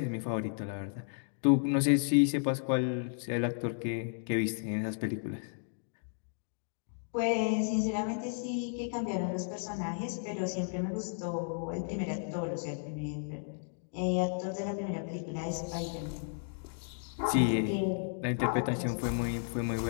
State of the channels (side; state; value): right; silent; digital silence